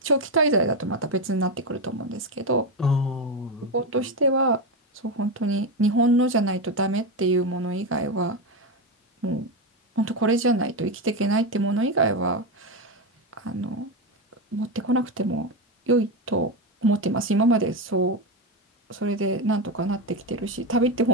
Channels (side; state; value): both; normal; correlation 0.12